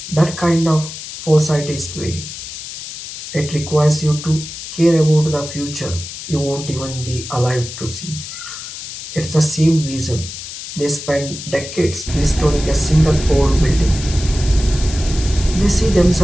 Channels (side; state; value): left; noise; hiss, 10 dB below the sound